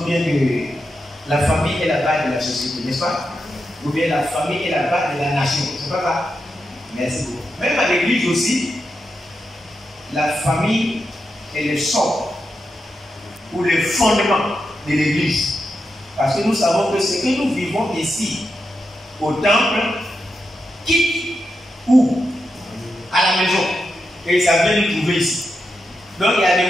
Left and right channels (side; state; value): both; normal; correlation 0.87